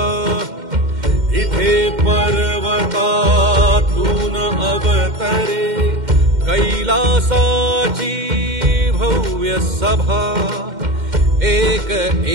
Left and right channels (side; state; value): left; late; 2.1 ms